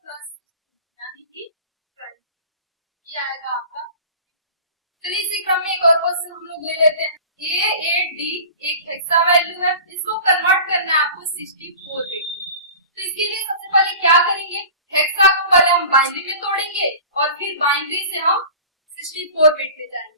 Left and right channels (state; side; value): inverted; both; correlation -0.39